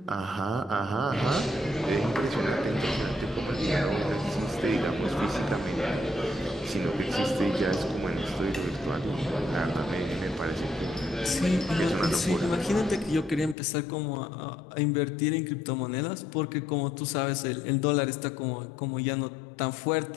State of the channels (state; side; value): drops out; right; at 13.6 s